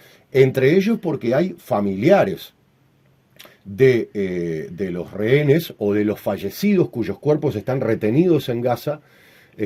entre ellos porque hay familiares de los rehenes o de los fallecidos cuyos cuerpos están retenidos en Gaza,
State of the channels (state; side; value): identical; both; correlation 1.00